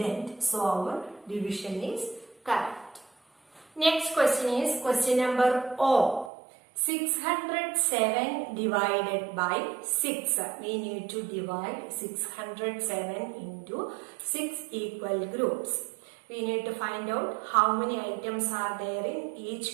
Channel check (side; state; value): left; drops out; at 6.3 s